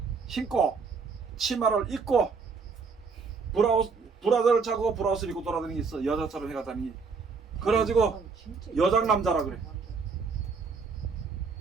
신고 치마를 입고 브라자를 차고 브라우스를 입고 돌아다니는 게 있어. 여자처럼 해가다니. 그래가지고 여장 남자라 그래.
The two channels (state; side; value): quieter; left; 5.0 dB